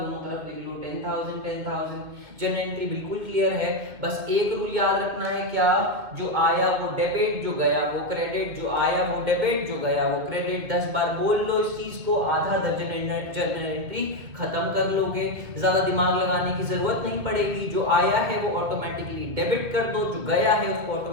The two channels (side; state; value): left; late; 2.4 ms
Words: तरफ लिख लो 10,000। जनरल एंट्री बिल्कुल क्लियर है। बस एक रूल याद रखना है, क्या, जो आया वो डेबिट, जो गया वो क्रेडिट, जो आया वो डेबिट, जो गया वो क्रेडिट। 10 बार बोल लो इस चीज को, आधा दर्जन जनरल एंट्री खत्म कर लोगे, ज्यादा दिमाग लगाने की जरूरत नहीं पड़ेगी। जो आया है वो ऑटोमेटिकली डेबिट कर दो, जो गया है उसको